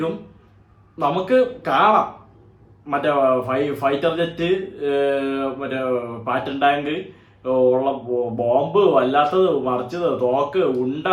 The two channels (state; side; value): identical; both; correlation 1.00